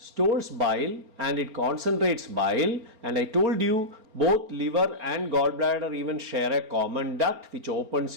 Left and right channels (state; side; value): late; left; 4.4 ms